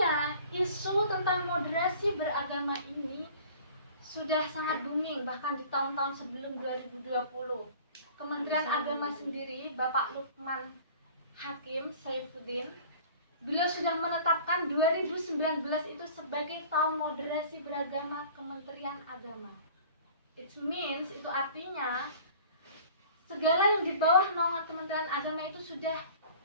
isu tentang moderasi beragama ini sudah sangat booming bahkan di tahun-tahun sebelum 2020. Kementerian Agama sendiri, Bapak Lukman Hakim Saifuddin, beliau sudah menetapkan 2019 itu sebagai tahun moderasi beragama Kementerian Agama. It means, itu artinya segala yang di bawah naungan Kementerian Agama itu sudah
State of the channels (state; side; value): inverted; both; correlation -0.46